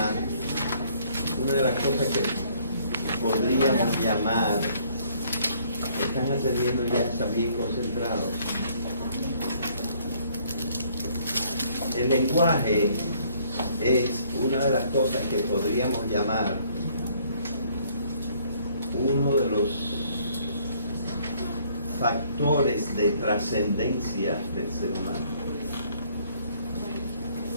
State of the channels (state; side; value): inverted; both; correlation -0.63